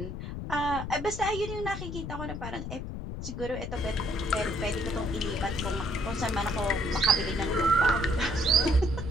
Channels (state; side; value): noise; left; rumble, 6 dB below the sound